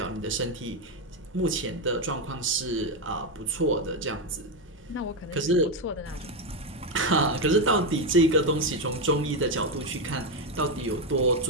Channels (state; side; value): normal; both; correlation 0.08